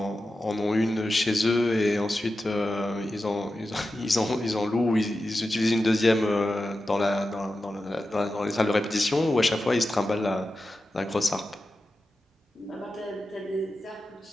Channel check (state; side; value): normal; both; correlation 0.92